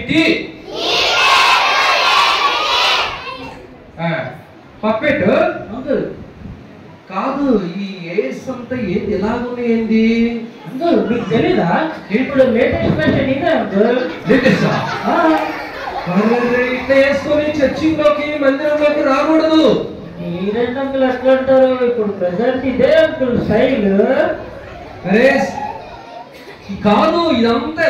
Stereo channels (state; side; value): identical; both; correlation 1.00